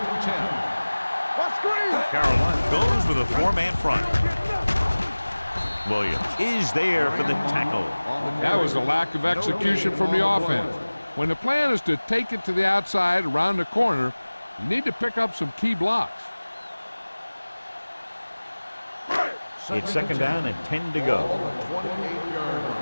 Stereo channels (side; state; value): both; inverted; correlation -1.00